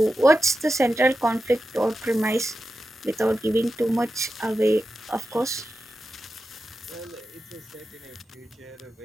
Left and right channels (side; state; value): both; normal; correlation 0.91